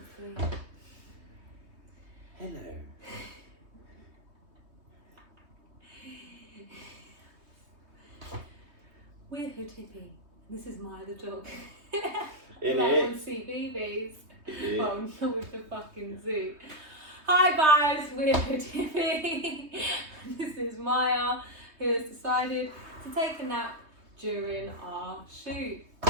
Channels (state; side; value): late; left; 3.2 ms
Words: Hello. We're Hood Hippy. This is Maya the dog. It like is. on CBeebies. Yeah. Oh, not with the fucking zoo. Hi guys, we're Hood Hippy. This is Maya, who has decided to take a nap during our shoot.